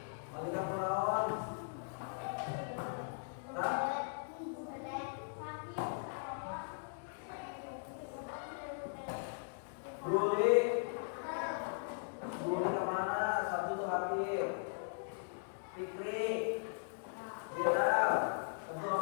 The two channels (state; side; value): silent; right; digital silence